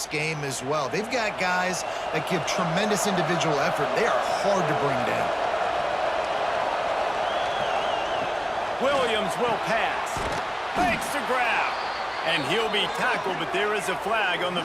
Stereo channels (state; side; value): identical; both; correlation 1.00